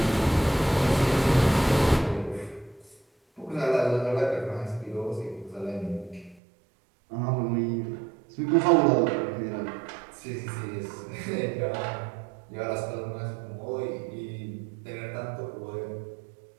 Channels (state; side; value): drops out; left; at 6.4 s